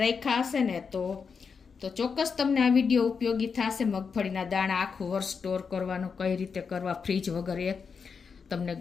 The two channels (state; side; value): quieter; right; 5.7 dB